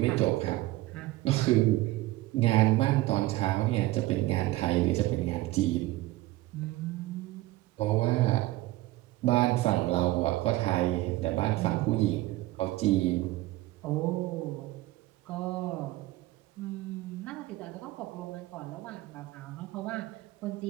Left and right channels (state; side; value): quieter; left; 18.1 dB